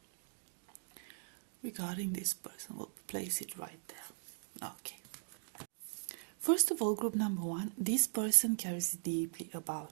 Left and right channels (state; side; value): silent; left; digital silence